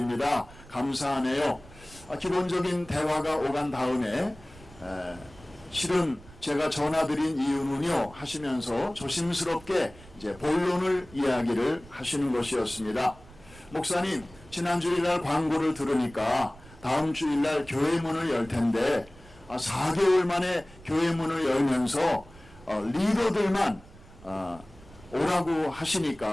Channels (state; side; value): noise; right; rumble, 22 dB below the sound